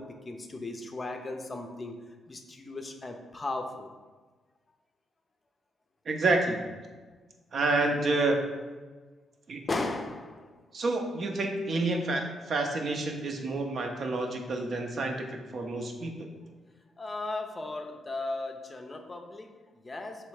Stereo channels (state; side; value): normal; both; correlation 0.76